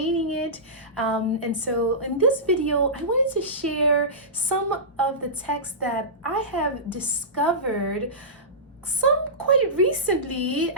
it. And so in this video, I wanted to share some of the texts that I have discovered some quite recently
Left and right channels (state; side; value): normal; both; correlation -0.19